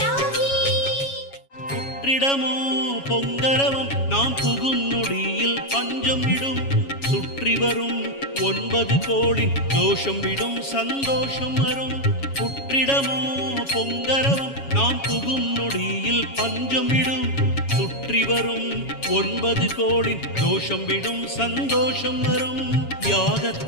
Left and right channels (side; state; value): right; late; 7.3 ms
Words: புற்றிடமோ பொங்கரவம் நாம் புகும் நொடியில் பஞ்சம் விடும் சுற்றி வரும் 9 கோடி தோஷம் விடும் சந்தோஷம் வரும் புற்றிடமோ பொங்கரவம் நாம் புகும் நொடியில் பஞ்சம் விடும் சுற்றி வரும் 9 கோடி தோஷம் விடும் சந்தோஷம் வரும்